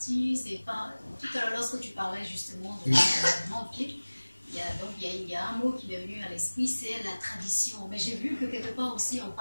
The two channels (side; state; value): both; inverted; correlation -1.00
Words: c'est pas... Tout à l'heure, lorsque tu parlais justement de l'environnement, il y a un mot qui m'est venu à l'esprit, c'est la tradition. Mais j'ai vu que quelque part aussi, on